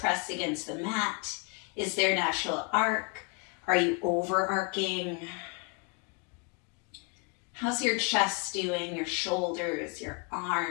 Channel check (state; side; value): quieter; right; 32.7 dB